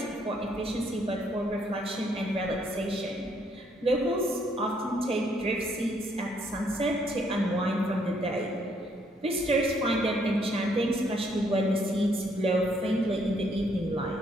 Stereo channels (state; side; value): normal; both; correlation 0.69